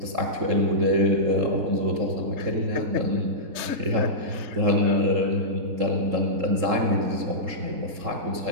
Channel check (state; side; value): late; left; 3.7 ms